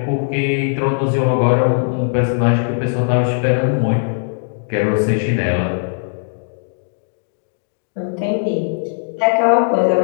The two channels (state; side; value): silent; right; digital silence